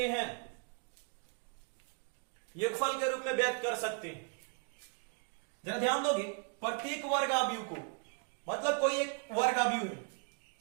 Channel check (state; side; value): quieter; left; 38.5 dB